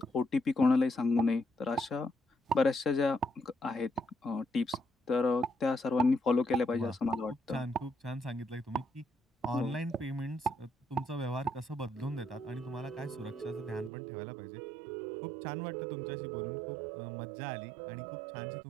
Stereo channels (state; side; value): drops out; left; at 13.9 s